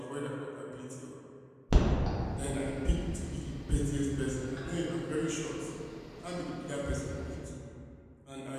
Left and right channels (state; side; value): identical; both; correlation 1.00